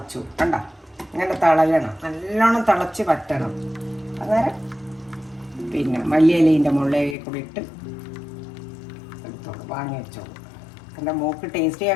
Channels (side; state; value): right; drops out; at 7.2 s